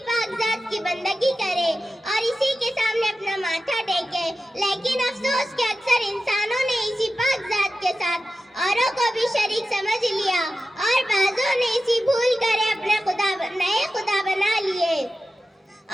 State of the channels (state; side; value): normal; both; correlation 0.92